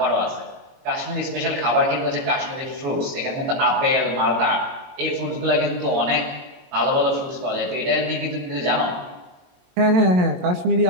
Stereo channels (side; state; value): left; late; 22 ms